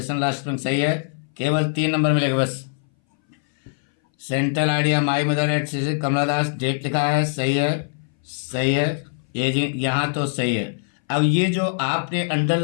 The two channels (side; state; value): right; silent; 61 dB below the other